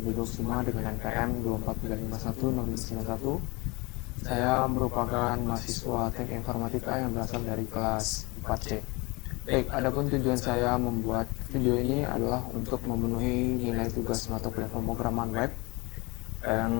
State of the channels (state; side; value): quieter; right; 26.2 dB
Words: dengan NPM 24351 Saya merupakan mahasiswa Teknik Informatika yang berasal dari kelas 4C. Baik, adapun tujuan saya membuat video ini adalah untuk memenuhi nilai tugas mata kuliah pemrograman web